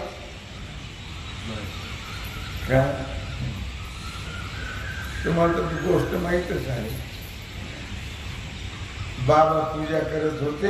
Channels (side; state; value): both; identical; correlation 1.00